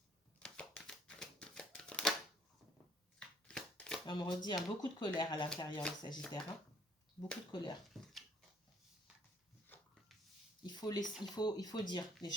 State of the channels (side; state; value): both; normal; correlation 0.62